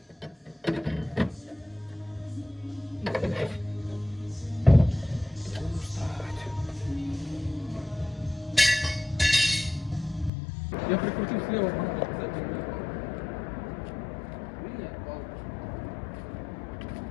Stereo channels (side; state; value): right; drops out; at 10.3 s